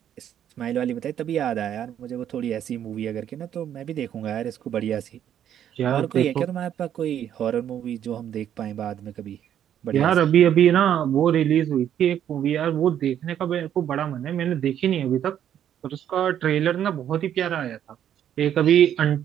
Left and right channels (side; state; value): left; quieter; 10.1 dB